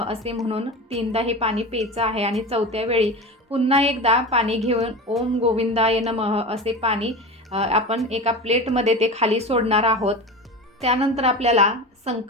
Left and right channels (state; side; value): normal; both; correlation 0.29